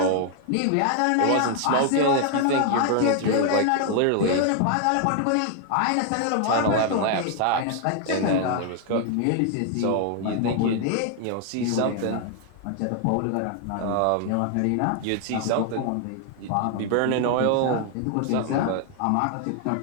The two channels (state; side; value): different; both; correlation 0.00